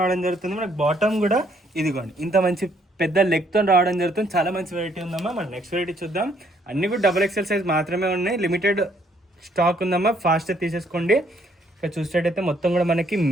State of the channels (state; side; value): normal; both; correlation 0.67